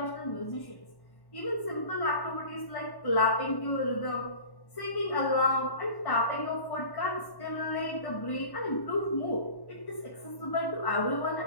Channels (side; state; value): right; late; 1.1 ms